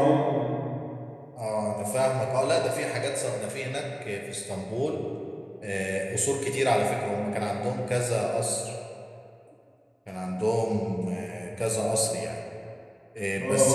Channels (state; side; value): identical; both; correlation 1.00